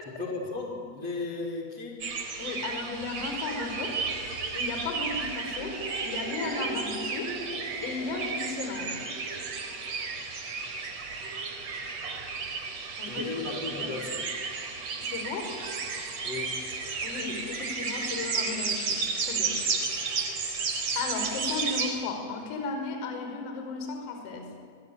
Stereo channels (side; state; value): left; late; 8.5 ms